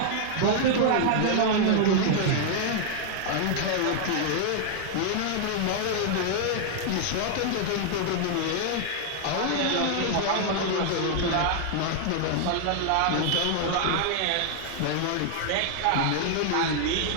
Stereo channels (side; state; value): both; different; correlation 0.00